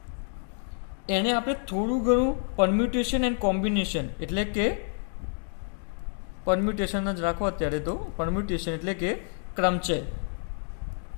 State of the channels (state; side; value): silent; right; 56 dB below the other